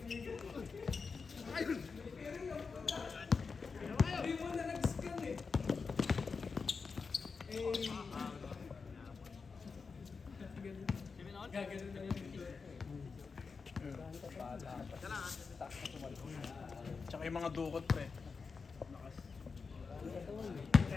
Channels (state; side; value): quieter; right; 5.0 dB